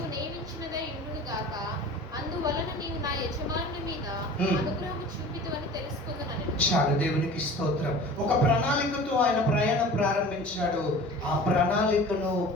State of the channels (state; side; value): normal; both; correlation 0.41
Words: నియమించినదై ఉండును గాక, అందువలన నీవు నా యజమానుని మీద అనుగ్రహము చూపితువని తెలుసుకుందనని. చాలు, దేవునికి స్తోత్రం. ఒక ప్రణాళికతో ఆయన ప్రయాణం ప్రారంభించాడు. ఆ ప్రణాళికను